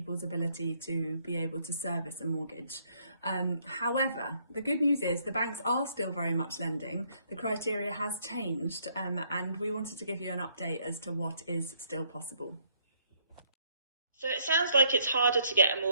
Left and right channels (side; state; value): both; inverted; correlation -0.67